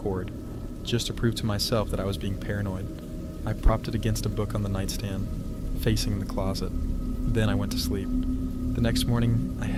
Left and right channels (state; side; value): identical; both; correlation 1.00